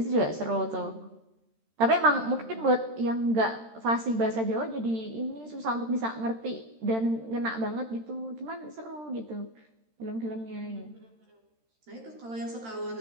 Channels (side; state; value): left; late; 13 ms